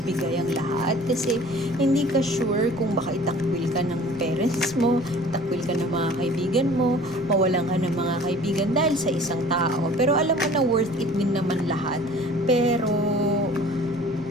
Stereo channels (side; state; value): left; noise; rumble, 20 dB below the sound